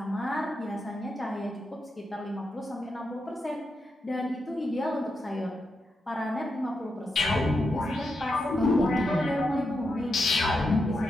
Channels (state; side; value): normal; both; correlation 0.85